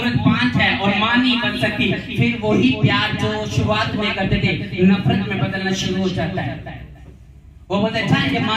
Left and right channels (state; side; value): identical; both; correlation 1.00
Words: बांझ है और माँ नहीं बन सकती, फिर वही प्यार जो शुरुआत में करते थे नफरत में बदलना शुरू हो जाता है। वो बोलते अच्छा ये